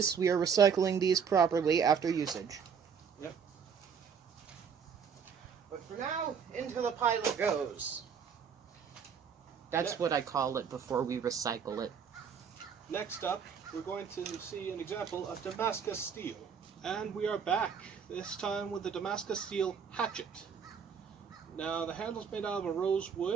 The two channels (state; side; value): quieter; left; 6.8 dB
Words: we are recycling these properly after usage. Yep. But for now, into the pile it goes. That's what I call it before we recycle it. Next up, we're going to see an example of Damascus Steel. And we are back, this time with the Damascus Steel Hatchet. Now, the handle's made out of a